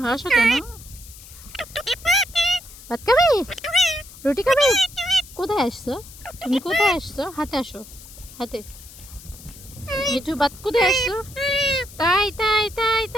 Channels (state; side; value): noise; left; hiss, 18 dB below the sound